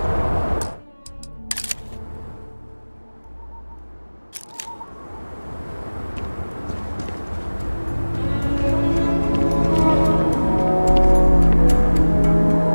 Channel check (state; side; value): inverted; both; correlation -1.00